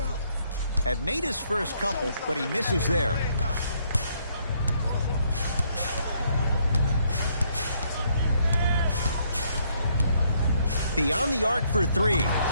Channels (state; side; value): inverted; both; correlation -0.70